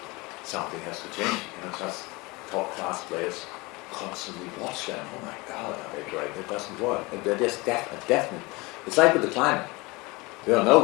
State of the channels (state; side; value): quieter; right; 24.4 dB